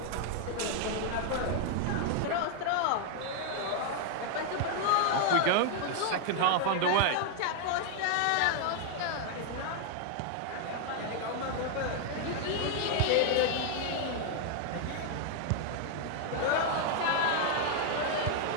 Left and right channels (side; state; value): both; different; correlation 0.00